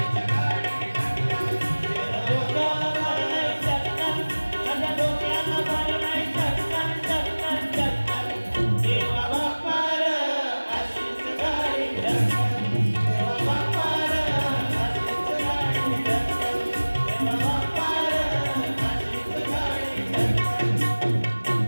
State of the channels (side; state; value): both; inverted; correlation -1.00